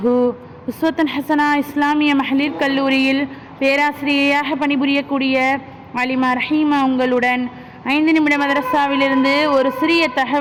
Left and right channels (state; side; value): identical; both; correlation 1.00